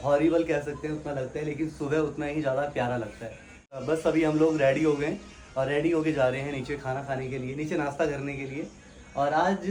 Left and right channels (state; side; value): identical; both; correlation 1.00